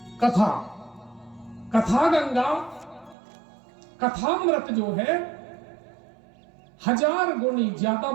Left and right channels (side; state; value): left; drops out; at 3.2 s